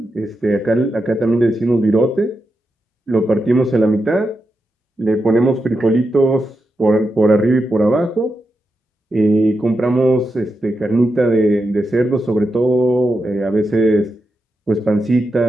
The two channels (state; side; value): normal; both; correlation 0.87